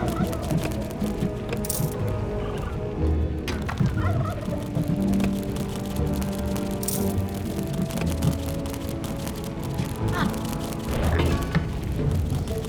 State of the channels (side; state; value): both; identical; correlation 1.00